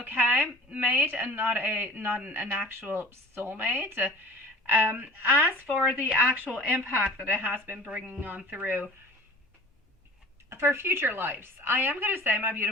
mate, and not an actual soulmate. As for the actual impact that it has been bringing on through for future lives, I am going to say, my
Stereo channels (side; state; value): both; normal; correlation 0.42